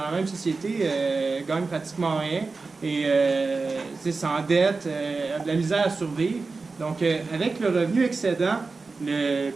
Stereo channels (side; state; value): left; quieter; 4.0 dB